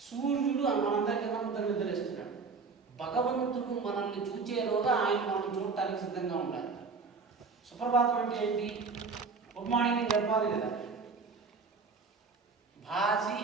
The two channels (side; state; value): left; quieter; 4.7 dB